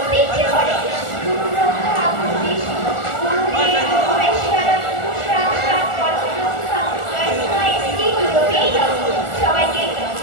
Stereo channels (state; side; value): late; right; 1.4 ms